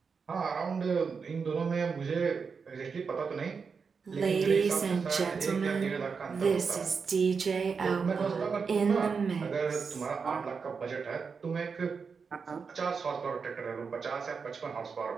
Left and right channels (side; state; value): left; quieter; 5.5 dB